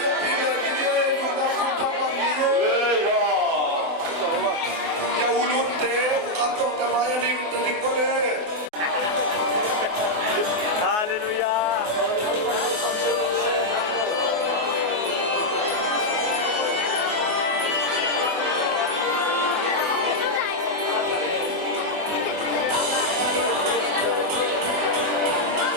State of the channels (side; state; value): left; late; 24 ms